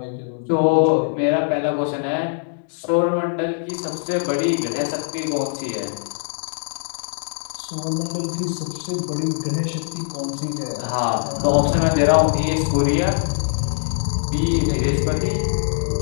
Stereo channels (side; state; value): right; silent; digital silence